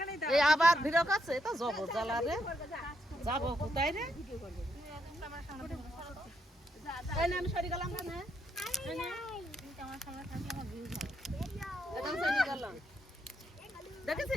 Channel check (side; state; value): both; normal; correlation 0.78